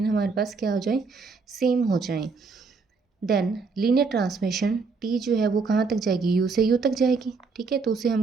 हमारे पास क्या हो जाए? सेम हो जाए। देन लीनियर ट्रांसमिशन टी जो है वो कहाँ तक जाएगी? यू से यू तक जाएगी, ठीक है। तो उसे हम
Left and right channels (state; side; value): quieter; left; 4.6 dB